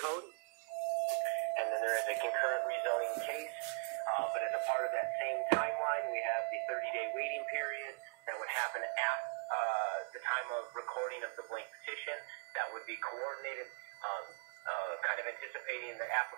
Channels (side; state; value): left; quieter; 38.2 dB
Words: And then there is a concurrent rezoning case, but as a part of that same timeline, we have the 30-day waiting period that would happen at the time of recording of the blank petition. That would be coordinated, kind of anticipating the